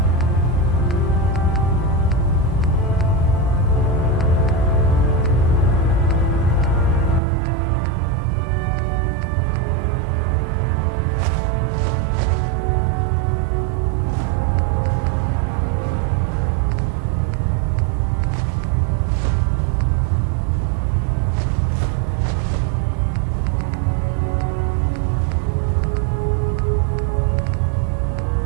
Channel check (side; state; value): left; drops out; at 7.2 s